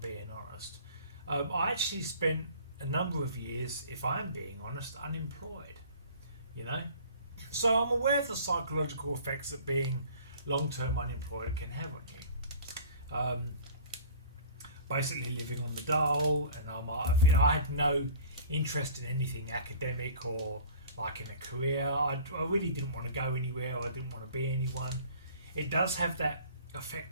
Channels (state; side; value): inverted; both; correlation -0.45